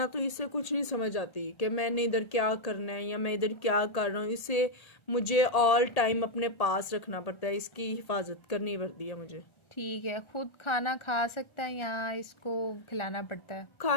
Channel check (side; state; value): right; late; 1.3 ms